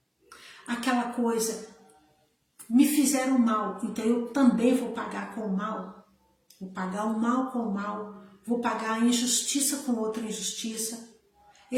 Aquela coisa, me fizeram mal, então eu também vou pagar com o mal. Vou pagar o mal com o mal, vou pagar a injustiça com outra injustiça.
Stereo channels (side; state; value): both; identical; correlation 1.00